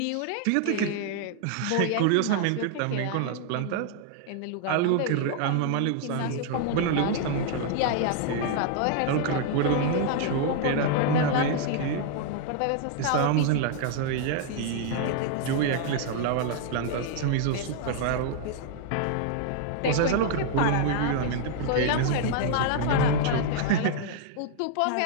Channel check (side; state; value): both; different; correlation 0.00